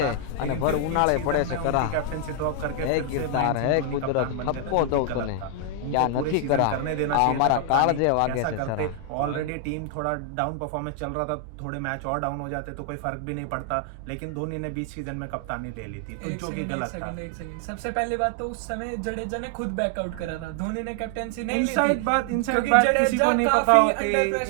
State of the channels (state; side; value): different; both; correlation 0.00